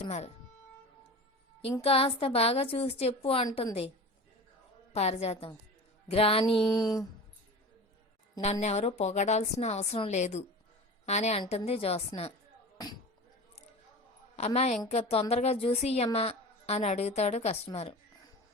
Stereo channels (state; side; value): normal; both; correlation 0.33